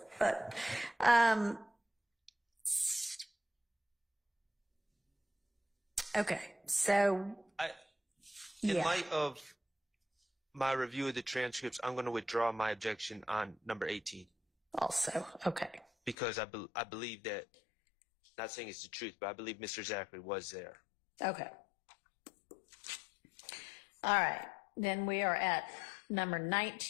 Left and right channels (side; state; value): right; drops out; at 16.2 s